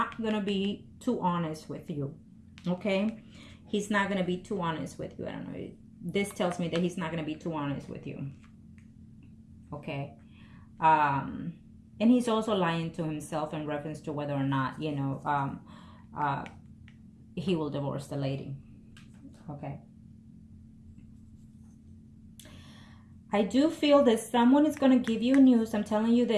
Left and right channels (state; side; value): identical; both; correlation 1.00